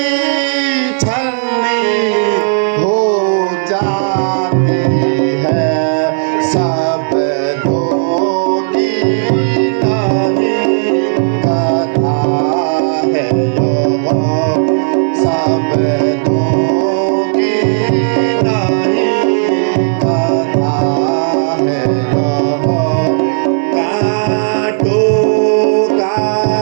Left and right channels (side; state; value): left; silent; digital silence